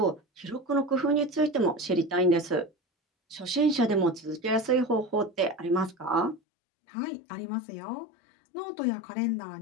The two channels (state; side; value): drops out; right; at 6.4 s